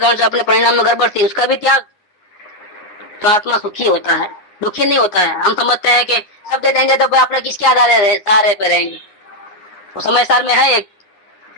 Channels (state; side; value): late; right; 9.8 ms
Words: से अपने परिणाम में गड़बड़ थी, उसका भी त्याग, तो आत्मा सुखी होता है, दुखी नहीं होता है। हम समझते हैं कि सब दे देंगे तो अपने किसके आधार सहारे पे रहेंगे। वो समय सार में है एक